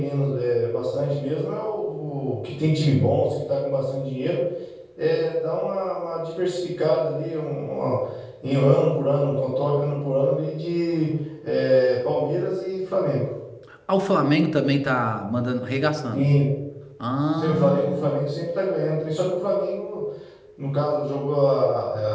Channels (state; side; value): identical; both; correlation 1.00